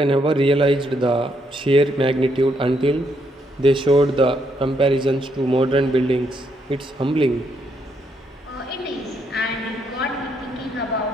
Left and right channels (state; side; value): normal; both; correlation 0.75